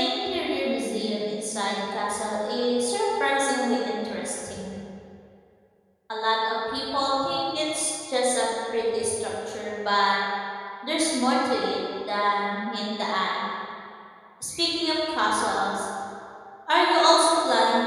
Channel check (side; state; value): both; identical; correlation 1.00